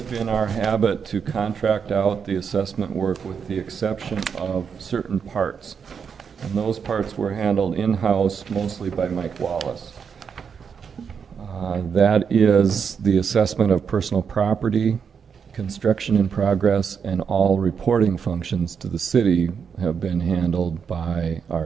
been our habit to contract out the assessment work with the exception of certain parts. And those parts were handled in-house mostly by Mike Wallace. That is the assessment of personal property, construction in progress, and all reporting functions to the city have been handled by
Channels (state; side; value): quieter; left; 6.6 dB